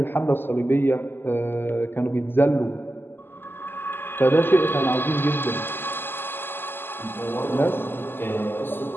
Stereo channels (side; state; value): right; late; 0.099 ms